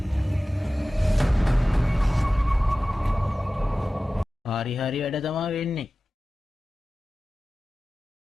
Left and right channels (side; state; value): both; normal; correlation 0.96